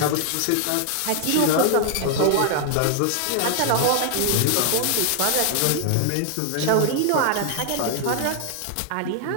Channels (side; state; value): both; different; correlation 0.00